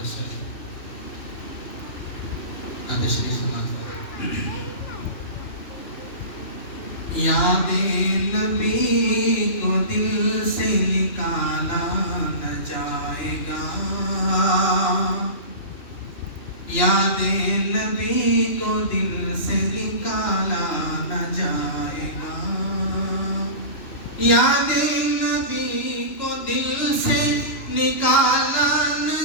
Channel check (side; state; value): right; late; 2.9 ms